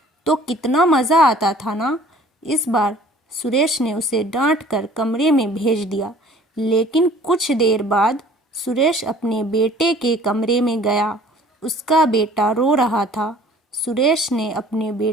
तो कितना मज़ा आता था ना। इस बार सुरेश ने उसे डांट कर कमरे में भेज दिया। लेकिन कुछ देर बाद सुरेश अपने बेटे के कमरे में गया। उसका बेटा रो रहा था। सुरेश ने अपने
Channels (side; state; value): both; normal; correlation 0.52